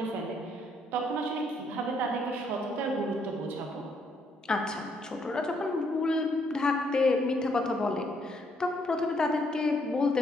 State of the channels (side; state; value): both; normal; correlation 0.71